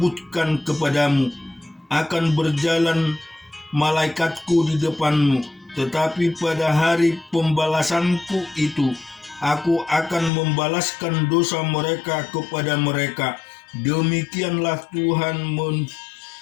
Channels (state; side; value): drops out; right; at 10.3 s